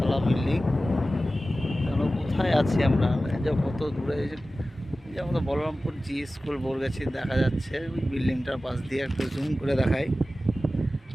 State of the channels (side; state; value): both; normal; correlation 0.95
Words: বিল্ডিং। এখন কোথায় আছি আমরা? এই যে কত দূরে, এই যে আমাদের বলরামপুর জি স্কুল বরগাছি দেখা যাচ্ছে। ওই বিল্ডিংটার পাশ দিয়ে একটু জুম করে দেখাই।